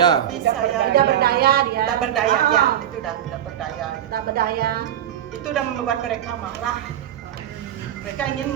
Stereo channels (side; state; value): left; quieter; 10.8 dB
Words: Bisa ya. Tidak berdaya dia. Tidak berdaya ya. Ah, Itu udah tidak berdaya. Gitu. tidak berdaya. Itu udah membuat mereka marah. Mereka ingin